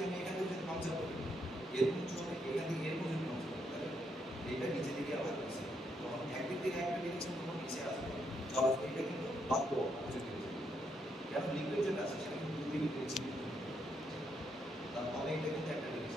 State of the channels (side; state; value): both; normal; correlation 0.77